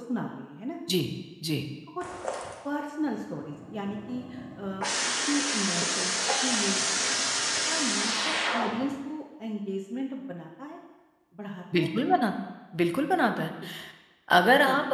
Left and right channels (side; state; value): both; identical; correlation 1.00